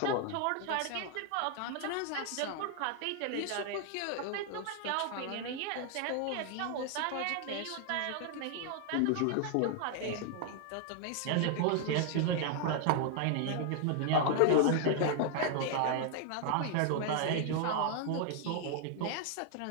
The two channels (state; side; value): different; both; correlation 0.00